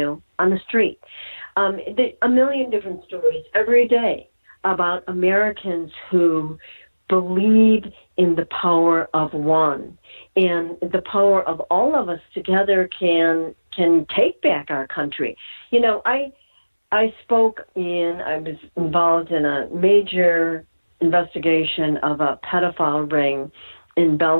the street. A million different stories every day about Americans who believe in the power of one, and the power of all of us together can take back our country. I was involved in a major investigation of a pedophile ring in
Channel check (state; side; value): inverted; both; correlation -1.00